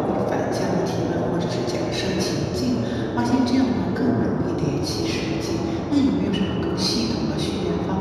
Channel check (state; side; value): identical; both; correlation 1.00